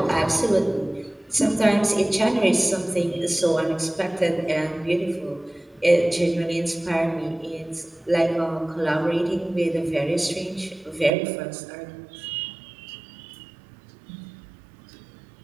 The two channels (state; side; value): drops out; left; at 11.1 s